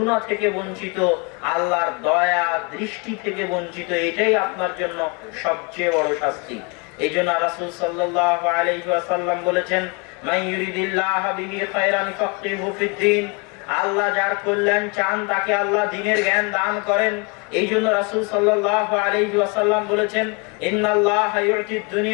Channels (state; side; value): quieter; right; 31.6 dB